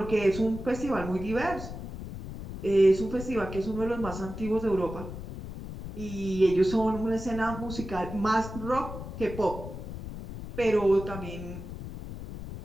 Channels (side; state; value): left; noise; rumble, 9 dB below the sound